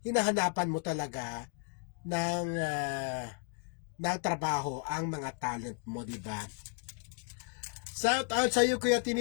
hinahanapan mo talaga ng trabaho ang mga talent mo, di ba? Shout out sa iyo Kuya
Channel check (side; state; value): right; quieter; 38.6 dB